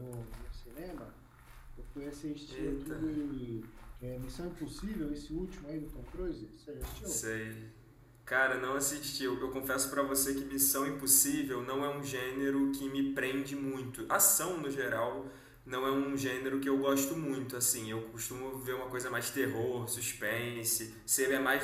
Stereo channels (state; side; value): identical; both; correlation 1.00